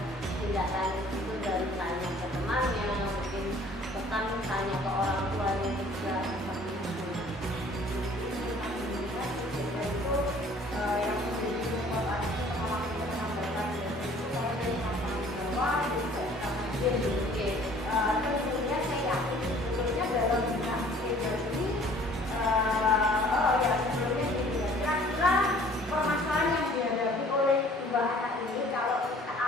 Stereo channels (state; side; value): normal; both; correlation 0.53